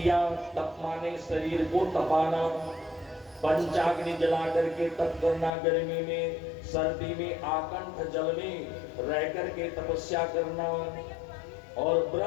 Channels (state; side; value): drops out; right; at 5.5 s